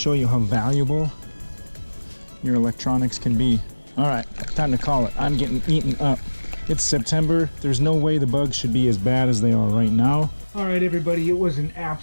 you how valuable your electronics can be. All right, time to call it. I'm getting eaten up. It's September. There's no way the bugs should be as bad as they are right now. All right, everybody, it was a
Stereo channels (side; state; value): both; inverted; correlation -1.00